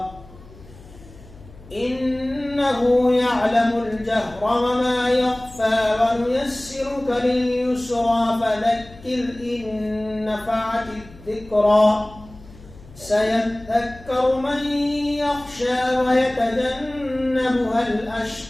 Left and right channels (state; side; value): noise; left; hum, 21 dB below the sound